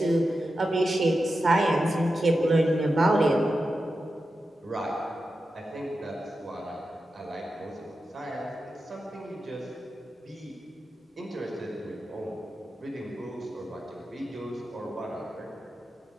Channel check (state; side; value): normal; both; correlation 0.90